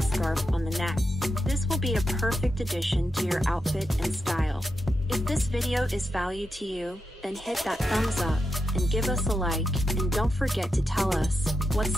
scarf on the neck. This will be a perfect addition to your outfit and style. If this video is value to you, then hit that thumbs up and give us a like, and don't forget to tell us what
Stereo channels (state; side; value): normal; both; correlation 0.86